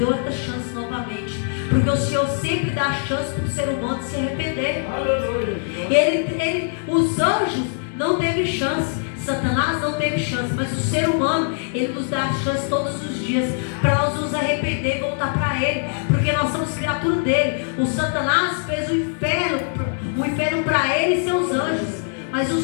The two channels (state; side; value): silent; right; 64 dB below the other